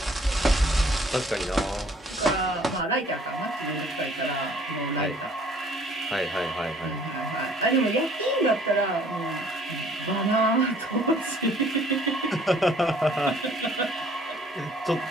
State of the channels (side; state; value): both; normal; correlation 0.57